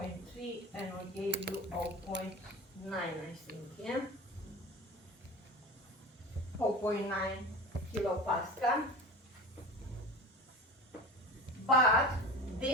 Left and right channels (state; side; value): normal; both; correlation 0.33